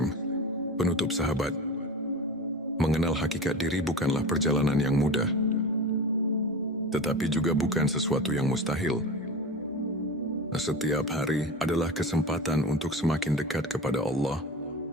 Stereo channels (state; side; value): normal; both; correlation 0.30